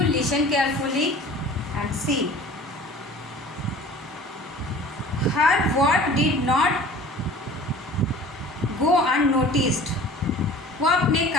listen carefully and see. Her work did not go unnoticed. वो अपने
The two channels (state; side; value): normal; both; correlation 0.44